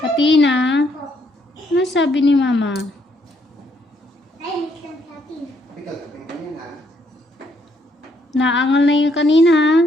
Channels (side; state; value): both; normal; correlation 0.71